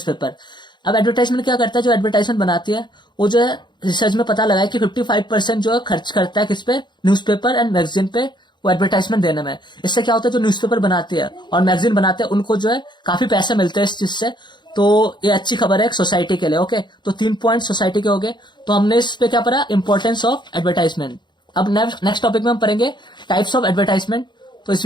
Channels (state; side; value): late; right; 0.22 ms